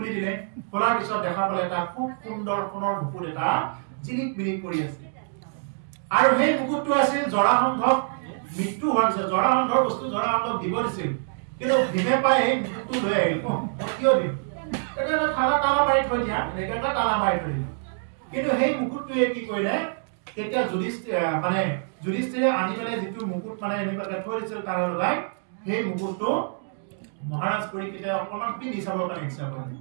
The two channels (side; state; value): left; silent; digital silence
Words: দিলে খোলাৰ পিছত দেখা পালে এটা খুব সুন্দৰ সোণৰ মুকুট এটা জিলিক মিলিক কৰি আছে আৰু সেই মুকুটটো আছিল জৰাসন্ধক মৃত্যু হোৱাৰ পিছত জৰাসন্ধৰ বস্তু জৰাসন্ধক দিব দিছিল কিন্তু ভীমে পাই সেই মুকুটটো লৈ আহিল মই কিয় দিম এটা তালা মাৰি থৈ দিয়া এনেকৈ তালা মাৰি থৈ দিয়া কিন্তু সেই মুকুটটোৱে কি কৰিলে তেতিয়া যুধিষ্ঠিৰে আনি পেলাই যিটো মুকুট মানে এনেকুৱাকে থৈ দিছিল তাৰ লগাই সেই মুকুটটো মহাৰাজ পৰীক্ষিতে অকণমান পিন্ধি চাবৰ কাৰণে ইচ্ছা কৰিলে